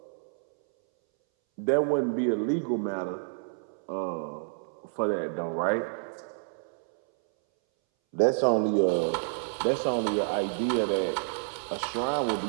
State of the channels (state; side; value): silent; left; 59 dB below the other